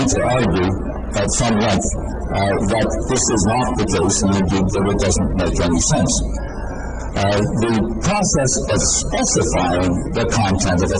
to argue at some length that this is not the case, and indeed that it doesn't make any sense. The process of specifying the content of a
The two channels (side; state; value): both; identical; correlation 1.00